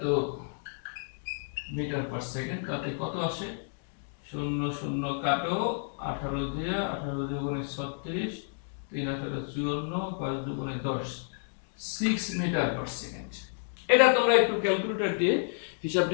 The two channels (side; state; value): right; silent; digital silence